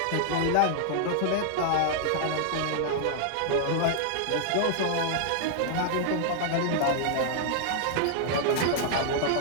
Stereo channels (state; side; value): different; both; correlation -0.01